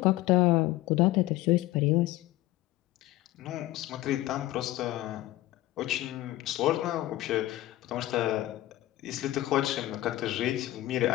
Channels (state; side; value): quieter; right; 16.5 dB